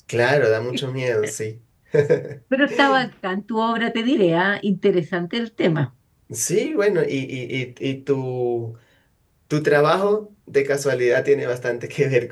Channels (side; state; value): both; identical; correlation 1.00